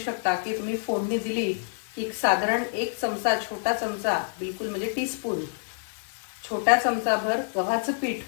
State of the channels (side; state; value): right; silent; digital silence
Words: की तुम्ही फोडणी दिली की साधारण 1 चमचा, छोटा चमचा, बिलकुल म्हणजे टीस्पून, छोट्या चमचाभर गव्हाचं पीठ